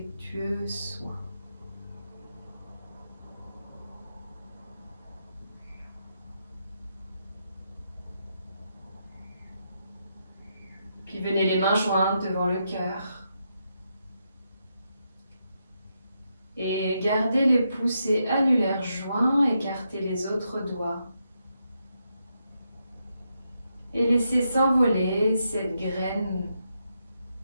soins. Puis venez les mains jointes devant le cœur. Et gardez les pouces et annulaires joints, écartez les autres doigts. Et laissez s'envoler cette graine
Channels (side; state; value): both; inverted; correlation -0.82